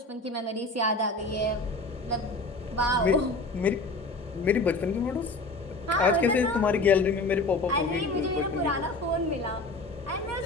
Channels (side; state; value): right; quieter; 3.1 dB